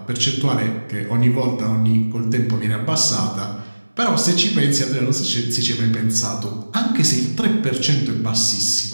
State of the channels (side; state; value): both; inverted; correlation -1.00